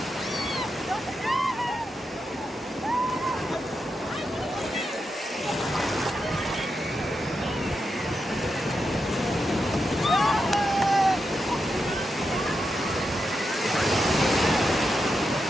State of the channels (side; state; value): both; normal; correlation 0.86